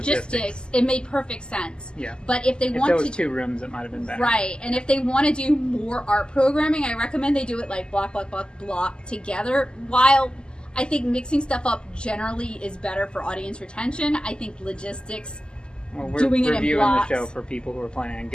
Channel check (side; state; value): right; late; 0.048 ms